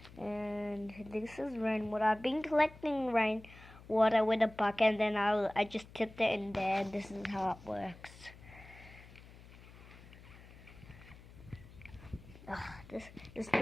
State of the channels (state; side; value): noise; left; hum, 19 dB below the sound